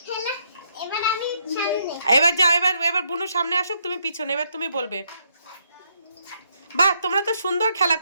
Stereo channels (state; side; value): inverted; both; correlation -0.74